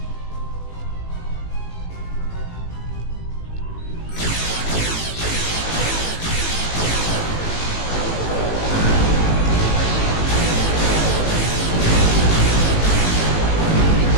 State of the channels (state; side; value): late; right; 18 ms